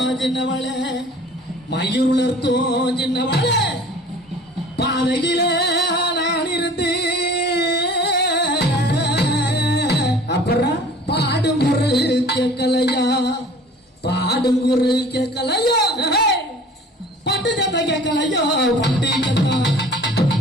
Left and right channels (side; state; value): both; normal; correlation 0.47